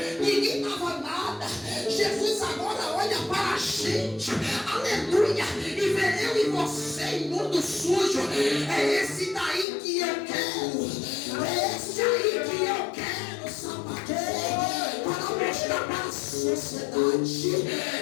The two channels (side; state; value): right; drops out; at 9.7 s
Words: ninguém dava nada. Jesus agora olha para a gente, aleluia, e vê eu e você imundo, sujo. É esse daí que eu quero, é esse aí que eu quero, sapateiro, para mostrar para a sociedade